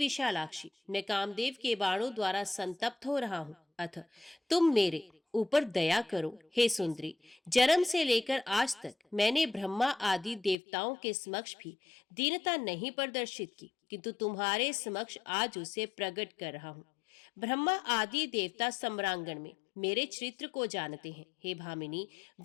मैं कामदेव के बाणों द्वारा संतप्त हो रहा हूँ, अतः तुम मेरे ऊपर दया करो। हे सुंदरी, जन्म से लेकर आज तक मैंने ब्रह्मा आदि देवताओं के समक्ष भी दीनता नहीं प्रदर्शित की, किंतु तुम्हारे समक्ष आज उसे प्रकट कर रहा हूँ। ब्रह्मा आदि देवता सम्रांगण में मेरे चरित्र को जानते हैं। हे भामिनी,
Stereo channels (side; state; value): right; drops out; at 10.6 s